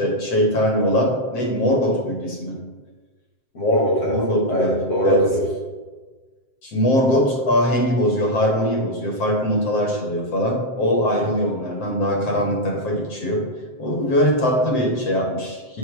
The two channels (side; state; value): right; late; 7.7 ms